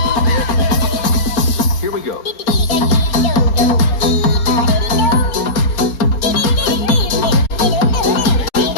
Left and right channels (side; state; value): right; late; 4.3 ms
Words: Here we go.